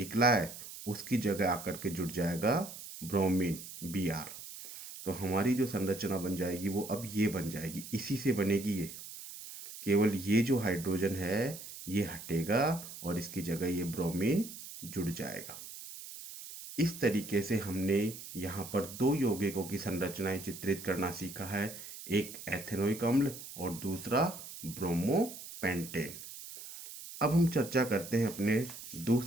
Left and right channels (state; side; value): noise; right; hiss, 12 dB below the sound